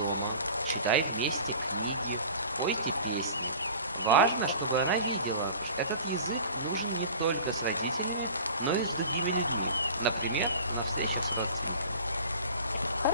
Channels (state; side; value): inverted; both; correlation -0.41